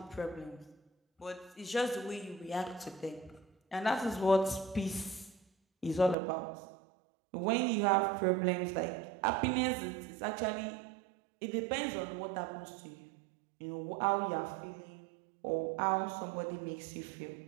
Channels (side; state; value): left; drops out; at 6.2 s